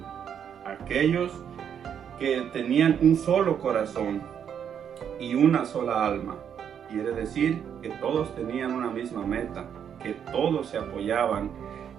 Aquellos que tenían un solo corazón y una sola alma. Quiere decir que todos tenían una misma meta, que todos se apoyaban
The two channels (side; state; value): left; quieter; 8.4 dB